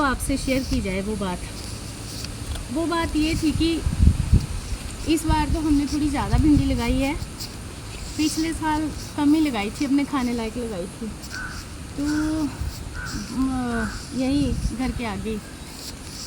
आपसे शेयर की जाए वो बात। वो बात ये थी कि इस बार तो हमने थोड़ी ज़्यादा भिंडी लगाई है। पिछले साल कम ही लगाई थी, अपने खाने लायक लगाई थी। तो यही घर के आगे,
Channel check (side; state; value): both; identical; correlation 1.00